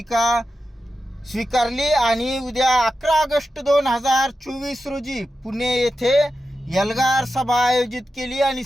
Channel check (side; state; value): both; normal; correlation 0.91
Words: स्वीकारली आणि उद्या 11 ऑगस्ट 2024 रोजी पुणे येथे एल्गार सभा आयोजित केली आणि